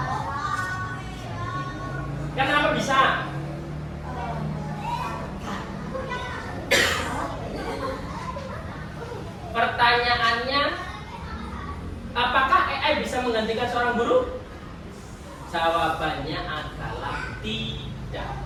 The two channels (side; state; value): both; identical; correlation 1.00